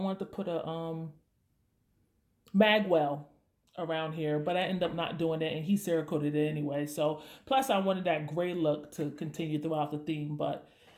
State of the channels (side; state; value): both; identical; correlation 1.00